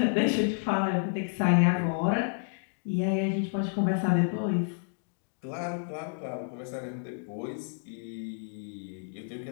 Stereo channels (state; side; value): silent; right; digital silence